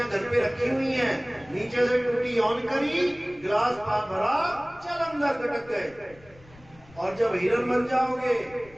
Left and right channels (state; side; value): noise; left; rumble, 24 dB below the sound